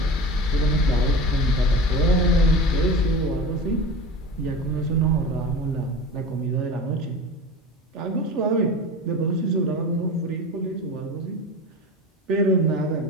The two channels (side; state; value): both; normal; correlation 0.32